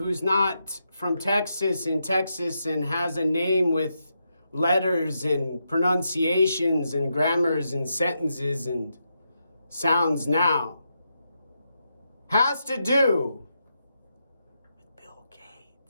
not from Texas and has a name with letters and pronunciations and grammars and sentences and sounds now, has to do with Bill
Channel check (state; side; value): inverted; both; correlation -0.84